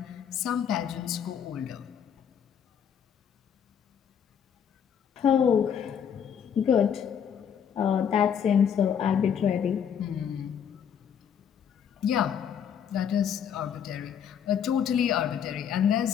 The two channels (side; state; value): right; quieter; 8.2 dB